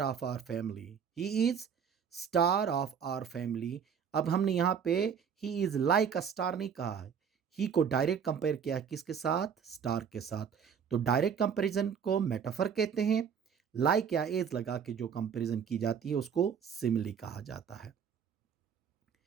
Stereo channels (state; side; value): quieter; left; 7.3 dB